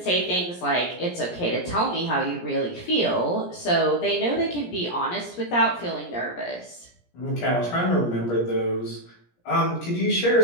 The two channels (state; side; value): late; right; 17 ms